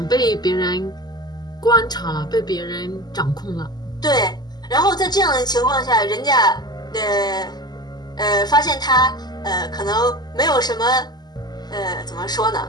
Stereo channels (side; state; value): right; late; 0.20 ms